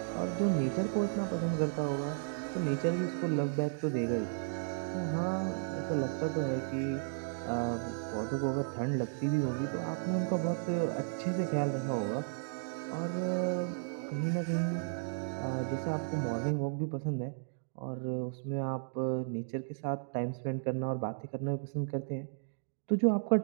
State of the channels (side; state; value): left; silent; digital silence